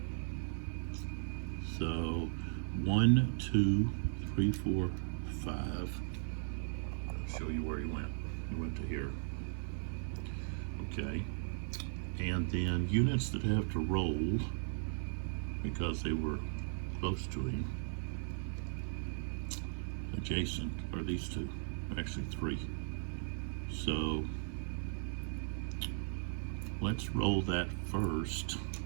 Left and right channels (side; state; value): left; silent; 53 dB below the other